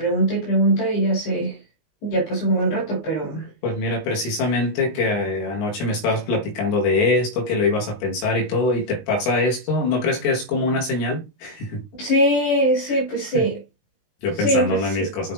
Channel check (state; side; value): late; right; 19 ms